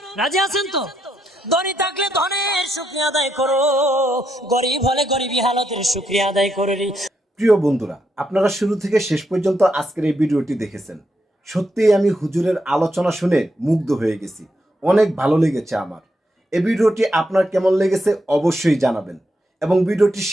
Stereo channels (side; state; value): both; normal; correlation 0.80